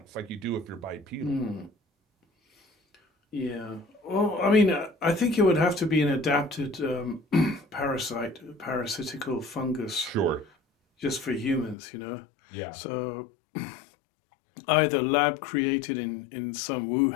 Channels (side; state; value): right; drops out; at 11.8 s